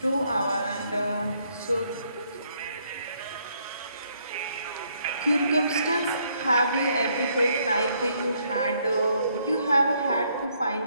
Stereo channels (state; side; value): inverted; both; correlation -0.71